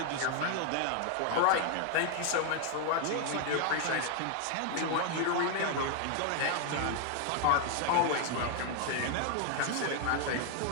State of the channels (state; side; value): different; both; correlation 0.00